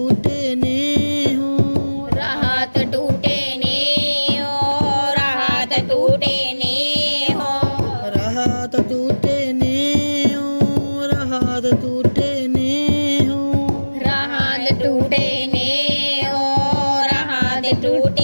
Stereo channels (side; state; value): both; inverted; correlation -1.00